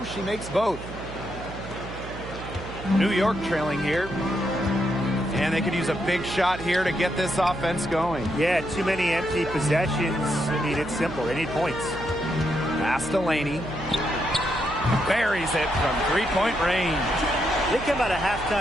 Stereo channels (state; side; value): noise; right; hum, 11 dB below the sound